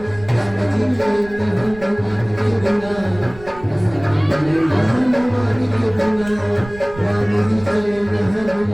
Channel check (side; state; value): right; noise; rumble, 18 dB below the sound